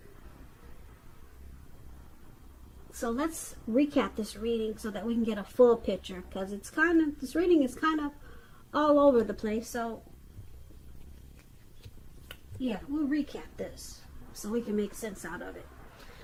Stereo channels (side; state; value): both; identical; correlation 1.00